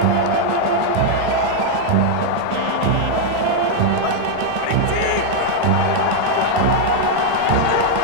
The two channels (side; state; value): both; different; correlation 0.00